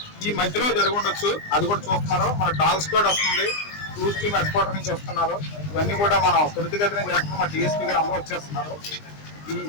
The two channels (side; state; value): right; late; 20 ms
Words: ఈ మధ్యలో జరిగి ఉండొచ్చు, అది కూడా చూస్తున్నారు. మన డాగ్ స్క్వాడ్ వస్తుంది, క్రూజ్ టీమ్ హెడ్ క్వార్టర్ నుంచి వస్తున్నారు. ఇవన్నీ కూడా మనం త్వరితగతిన చేస్తున్నాం. మా డిఎస్పీ గారు అందరూ వచ్చేస్తున్నారు. ఈ